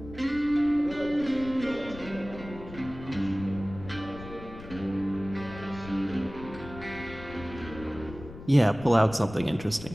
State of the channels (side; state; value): left; noise; rumble, 14 dB below the sound